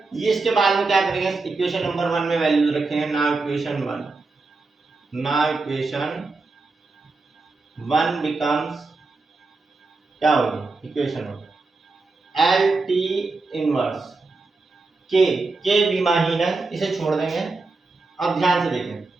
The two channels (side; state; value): left; quieter; 3.7 dB